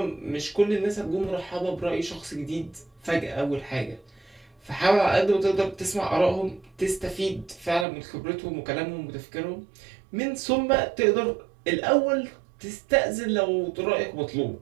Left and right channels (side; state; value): left; drops out; at 7.9 s